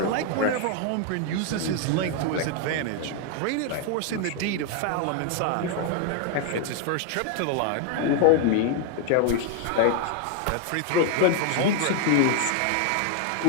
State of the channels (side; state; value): both; different; correlation 0.00